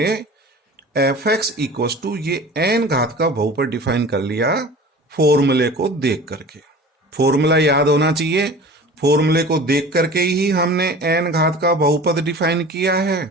fx इक्वल टू ये n घात का बहुपद डिफाइन कर लिया फॉर्मूले को देख करके। फॉर्मूला याद होना चाहिए, फॉर्मूले को देख करके ही हमने n घात का बहुपद डिफाइन किया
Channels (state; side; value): normal; both; correlation 0.39